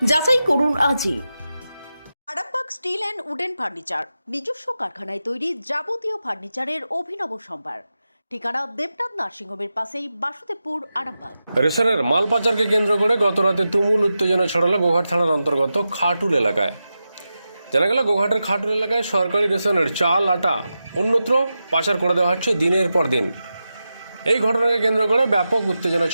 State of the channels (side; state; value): both; inverted; correlation -0.91